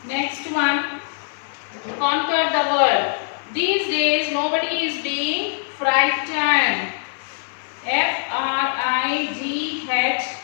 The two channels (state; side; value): silent; right; 55 dB below the other